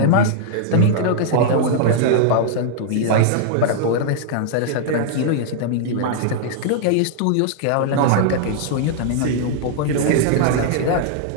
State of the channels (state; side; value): different; both; correlation -0.01